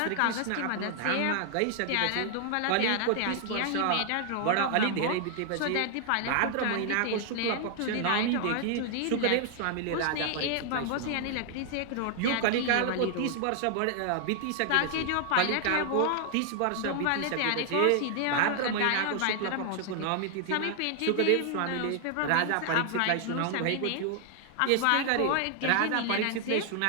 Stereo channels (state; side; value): different; both; correlation 0.00